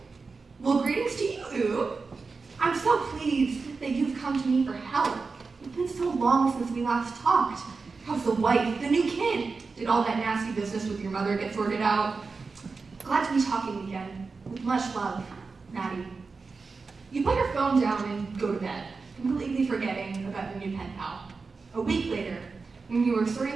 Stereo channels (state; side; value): quieter; left; 4.4 dB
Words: well, greetings to you. I'm so pleased that you've come to me for help. It's been so long since we last talked. How's the wife, the new kid? Did all that nasty business with your mother get sorted out? Glad to be talking again. With much love, Maddie. You put your phone down and go to bed, completely forgetting about your new pen pal. A week later, when you were